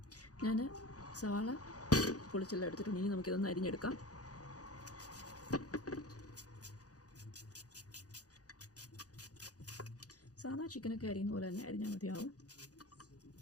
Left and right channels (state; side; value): late; right; 0.67 ms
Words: ഞാൻ സവാള പൊളിച്ചെല്ലാം എടുത്തിട്ടുണ്ട്. ഇനി നമുക്കിതൊന്ന് അരിഞ്ഞെടുക്കാം. സാധാ ചിക്കനൊക്കെ അരിയുന്ന പോലെ തന്നെ അരിഞ്ഞാൽ മതിയാവും.